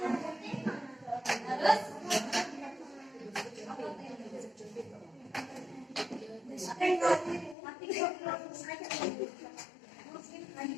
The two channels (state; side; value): drops out; right; at 7.6 s